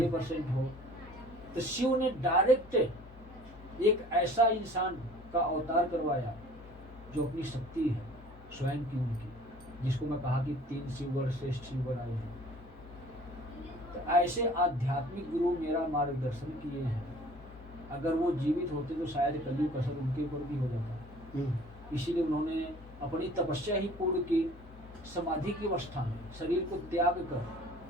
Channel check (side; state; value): both; normal; correlation 0.49